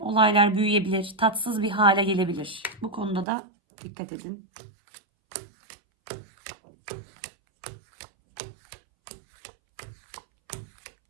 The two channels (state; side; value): drops out; left; at 3.2 s